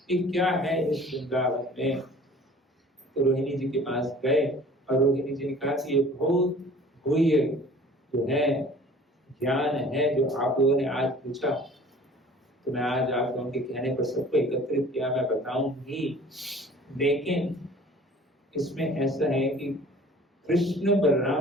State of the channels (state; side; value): normal; both; correlation 0.48